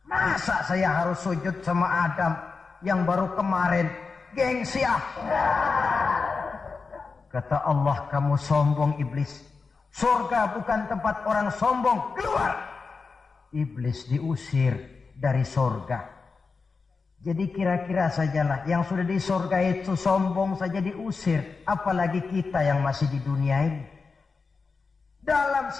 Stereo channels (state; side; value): quieter; right; 4.6 dB